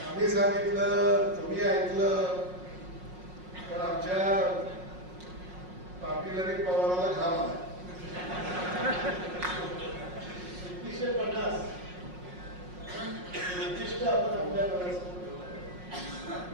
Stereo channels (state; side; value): late; left; 5.5 ms